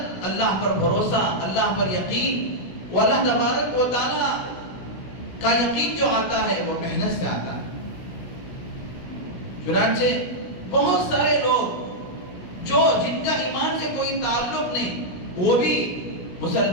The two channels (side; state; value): right; late; 16 ms